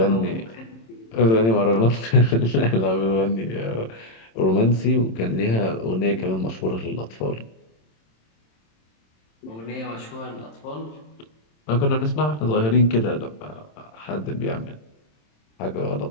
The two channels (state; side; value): late; right; 27 ms